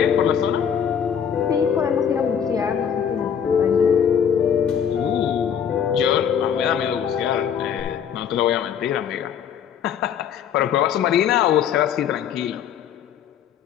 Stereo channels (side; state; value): right; quieter; 8.2 dB